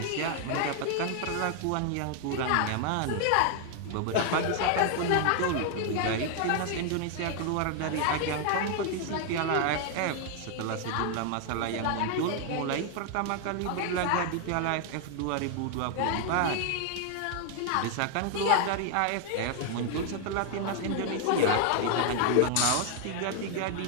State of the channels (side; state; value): both; different; correlation 0.00